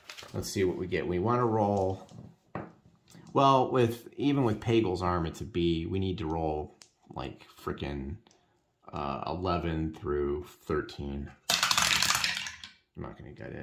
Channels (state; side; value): identical; both; correlation 1.00